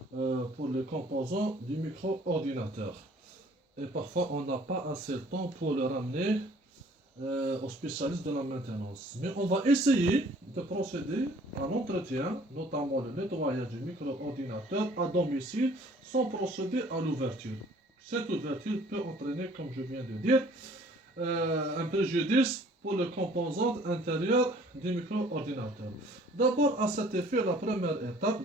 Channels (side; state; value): both; normal; correlation 0.55